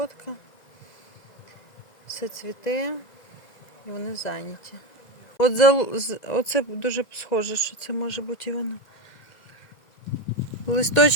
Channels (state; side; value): late; right; 1.9 ms